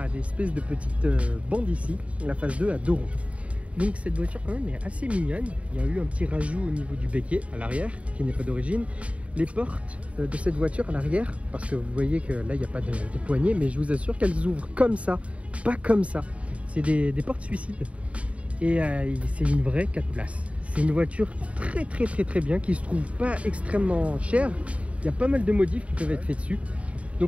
des espèces de petites bandes ici. La phase 2 a deux ronds. Donc cette voiture quand même est assez mignonne. Il y a eu un petit rajout au niveau du béquet à l'arrière qui n'est pas d'origine. Les portes de cette voiture à l'arrière, parce que vous voyez que là il n'y a pas de poignée, mais je vous assure qu'elles ouvrent comme ça, pas comme ça. C'est des portes suicides et c'est une vraie 4 places. C'est une voiture très bien qui se trouve pas extrêmement chère. Il y a pas mal de modifs qui peuvent être faits dessus.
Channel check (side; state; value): left; late; 0.064 ms